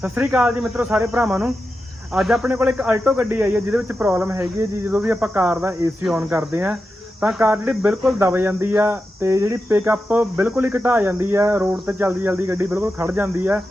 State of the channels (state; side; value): normal; both; correlation 0.90